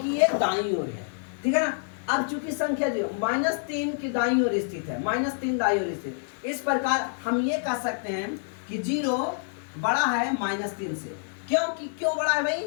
ये दाईं ओर है। ठीक है ना? अब चूंकि संख्या जो -3 की दाईं ओर स्थित है, -3 दाईं ओर स्थित, इस प्रकार हम ये कह सकते हैं कि 0 बड़ा है -3 से। क्यों बड़ा है भाई?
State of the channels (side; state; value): right; silent; 60 dB below the other